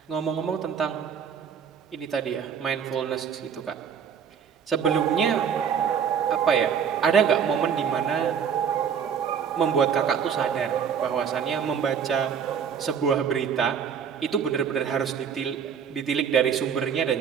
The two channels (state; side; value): quieter; left; 7.4 dB